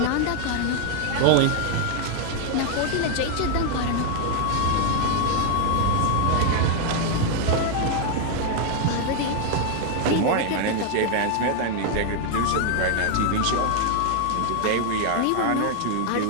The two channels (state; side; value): different; both; correlation 0.00